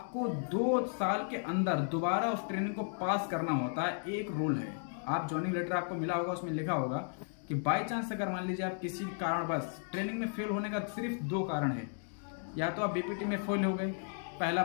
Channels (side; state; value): right; silent; 55 dB below the other